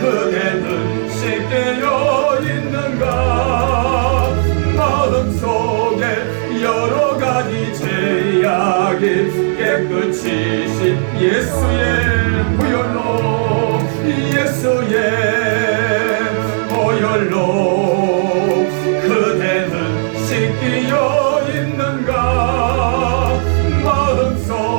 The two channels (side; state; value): left; silent; digital silence